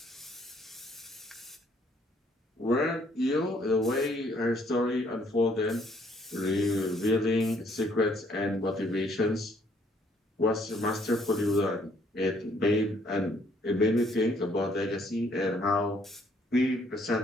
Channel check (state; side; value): normal; both; correlation 0.66